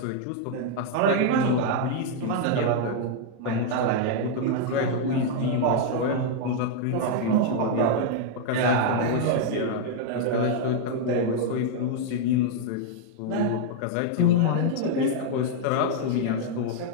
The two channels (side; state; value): both; different; correlation -0.01